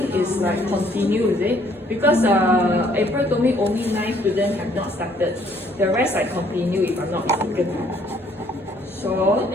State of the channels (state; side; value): normal; both; correlation 0.63